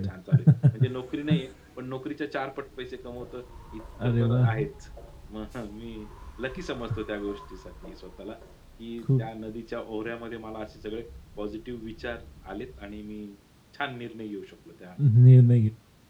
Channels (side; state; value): both; identical; correlation 1.00